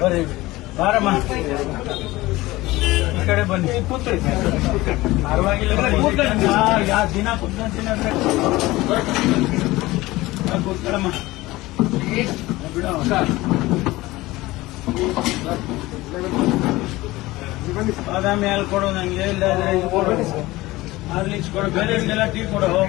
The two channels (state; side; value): quieter; right; 19.2 dB